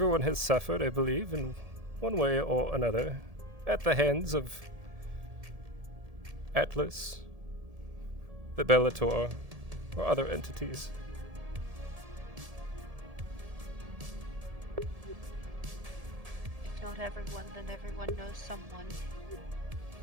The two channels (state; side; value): late; left; 1.7 ms